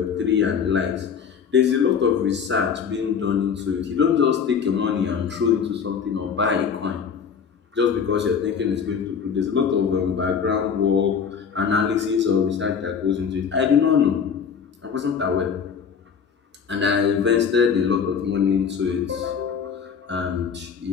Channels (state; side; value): quieter; right; 6.8 dB